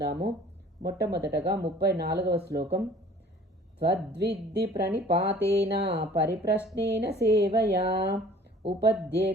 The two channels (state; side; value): normal; both; correlation 0.50